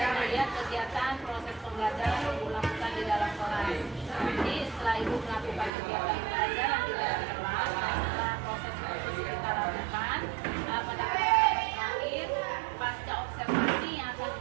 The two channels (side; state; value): left; drops out; at 5.7 s